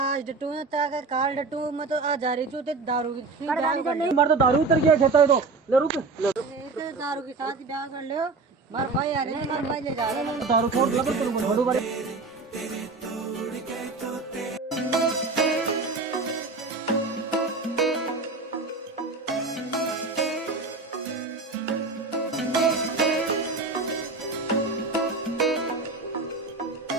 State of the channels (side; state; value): left; quieter; 3.9 dB